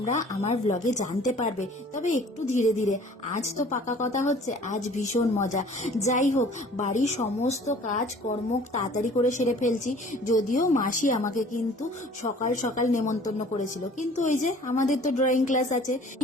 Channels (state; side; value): normal; both; correlation 0.50